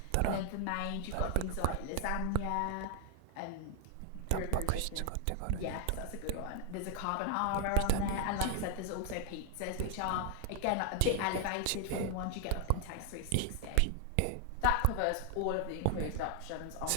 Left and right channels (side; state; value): both; different; correlation 0.00